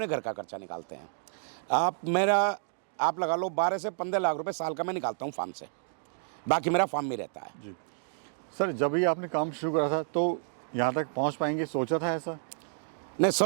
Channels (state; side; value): silent; left; digital silence